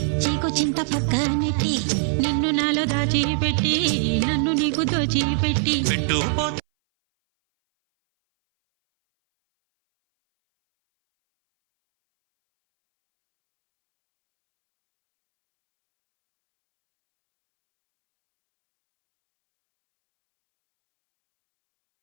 చీకు చింత పక్క నెట్టి నిన్ను నాలో దాచిపెట్టి నన్ను నీకు దోచిపెట్టి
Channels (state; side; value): silent; left; 61 dB below the other